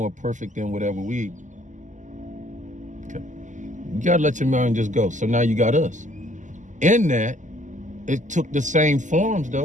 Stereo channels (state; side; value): late; left; 0.36 ms